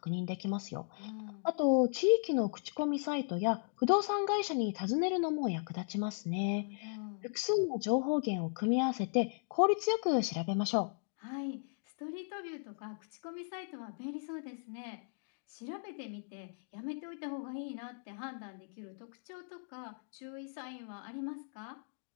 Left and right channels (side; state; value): right; silent; digital silence